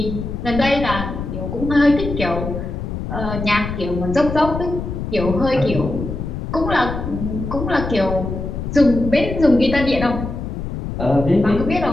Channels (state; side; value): noise; left; rumble, 5 dB below the sound